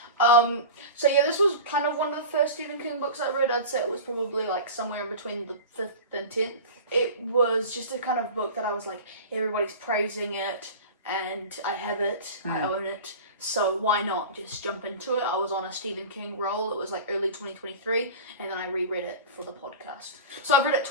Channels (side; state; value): both; inverted; correlation -0.32